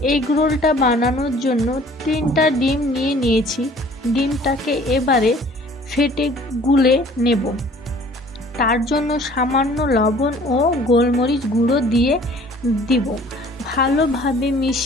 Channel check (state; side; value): normal; both; correlation 0.52